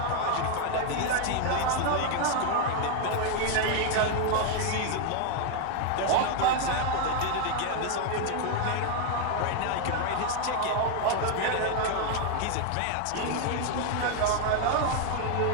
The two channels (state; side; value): different; both; correlation 0.01